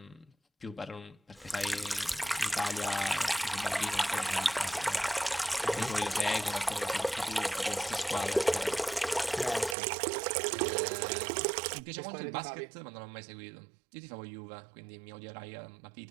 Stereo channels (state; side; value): drops out; left; at 9.8 s